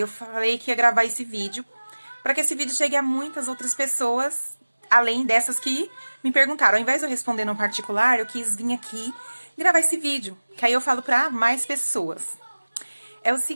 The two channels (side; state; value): both; inverted; correlation -1.00